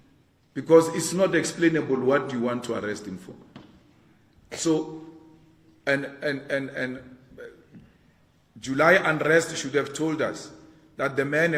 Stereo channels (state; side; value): identical; both; correlation 1.00